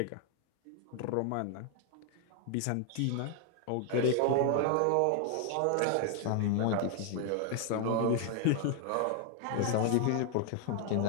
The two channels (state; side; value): different; both; correlation 0.00